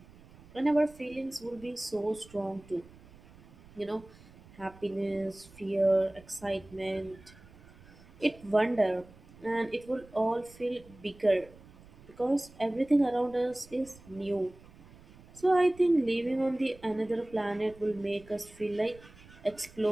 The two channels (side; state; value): right; noise; rumble, 22 dB below the sound